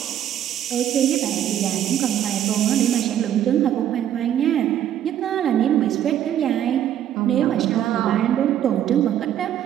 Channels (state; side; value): quieter; left; 10.7 dB